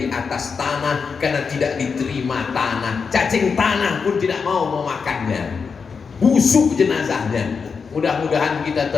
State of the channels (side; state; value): right; quieter; 5.5 dB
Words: atas tanah, karena tidak diterima tanah. Cacing tanah pun tidak mau memakannya. Busuk jenazahnya. Mudah-mudahan kita